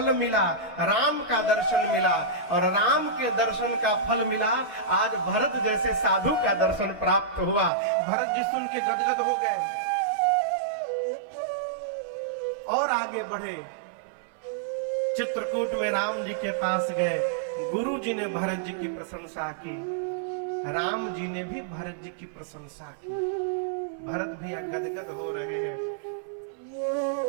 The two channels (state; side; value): drops out; left; at 7.7 s